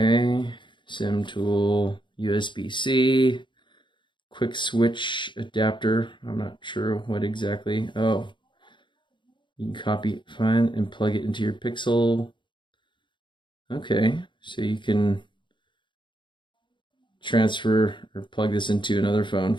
SIM tool, USB-C, quick switch adapter. I'm not sure what exactly. Oh. You can copy it, find, and plug it into your Pixel. Okay, so you can transfer or plug this into another phone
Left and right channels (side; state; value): right; late; 0.23 ms